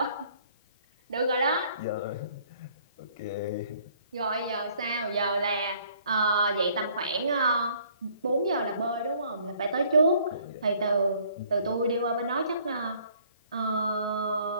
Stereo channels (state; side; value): inverted; both; correlation -0.61